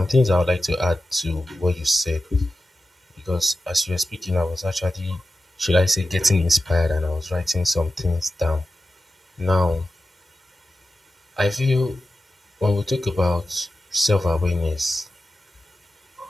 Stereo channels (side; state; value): both; normal; correlation 0.92